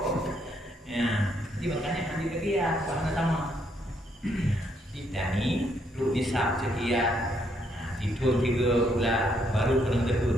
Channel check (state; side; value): normal; both; correlation 0.73